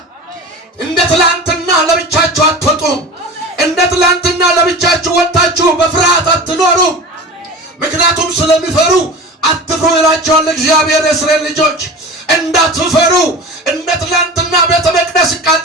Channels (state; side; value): normal; both; correlation 0.33